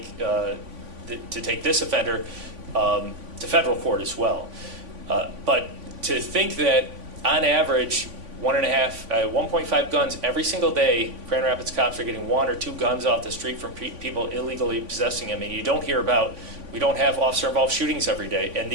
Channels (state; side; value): late; left; 3.5 ms